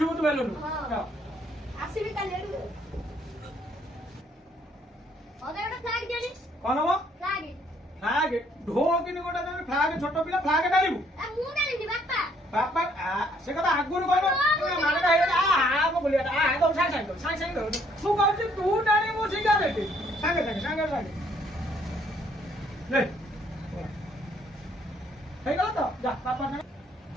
বেলুন। আসিবি কালি এড়ু। ওদের একটা ফ্ল্যাগ দিওনি। কোন হবো? ফ্ল্যাগ ফ্লাগ ঢো কিনি গোটা তুমি ফ্লাগ ছোট পিলা ফ্লাগ ডালিবু এ মু ডালিনি বাপ্পা। বাপা সে কথা আগুন কইব মানেটা হেই আ বলিয়াটা দৌ সাং দৌ ମୁଁ କହୁଛି ତୁ ଜାଣିବୁ ସିଗାରେଟ ସାଙ୍ଗେ ନେ ହେଇଗଲା ତ ଯା ବାପା ନା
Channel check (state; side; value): normal; both; correlation 0.66